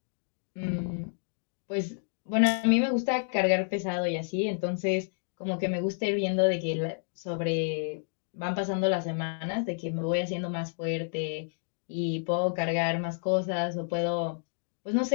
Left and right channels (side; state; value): right; silent; digital silence